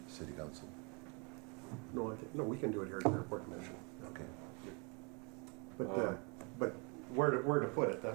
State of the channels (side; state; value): left; quieter; 32.0 dB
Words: city council? No, we can do it here at the airport commission. Okay. But where to put it?